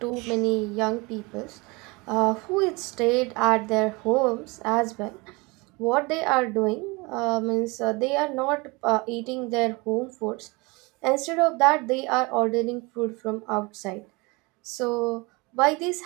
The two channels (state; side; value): quieter; left; 25.8 dB